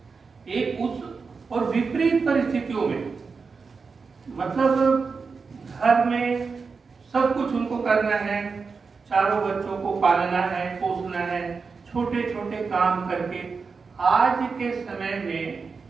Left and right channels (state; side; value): quieter; left; 4.9 dB